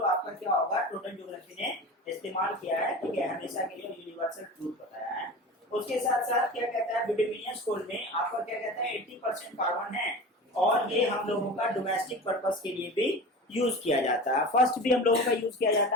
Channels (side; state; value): both; normal; correlation 0.32